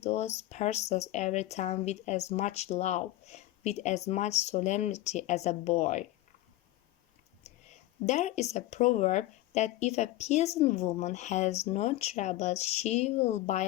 those parcels every time with as much love, with as much solemnity as a boy. There is a proverb that if a peasant woman has no troubles she will buy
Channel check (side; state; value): right; quieter; 16.0 dB